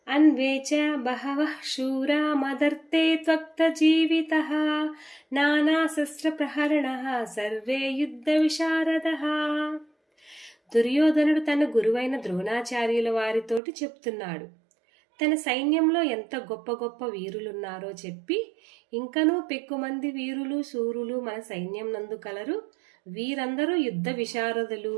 అన్వేచ బహవః శూరా మదర్తే త్వక్త జీవితః నానాశస్త్ర ప్రహరణః సర్వే యుద్ధ విశారదః. దుర్యోధనుడు తన గురువైన ద్రోణాచార్యుల వారితోటి చెప్తున్నాడు. తన సైన్యంలో ఎంత గొప్ప గొప్ప వీరులున్నారో చెప్పి, ఇంకనూ పెక్కుమంది వీరులు శూరులు మన సైన్యం నందు కలరు. వీరందరూ యుద్ధ విశారదులు,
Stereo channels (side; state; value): left; drops out; at 13.6 s